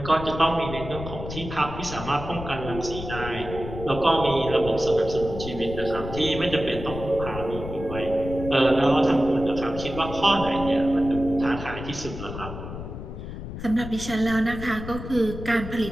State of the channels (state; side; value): noise; left; rumble, 9 dB below the sound